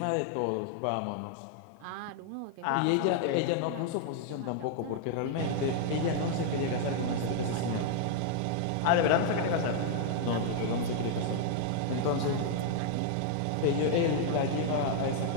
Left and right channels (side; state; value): both; different; correlation 0.00